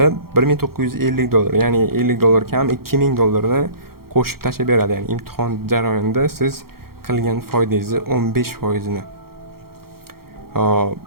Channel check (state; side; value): late; left; 0.94 ms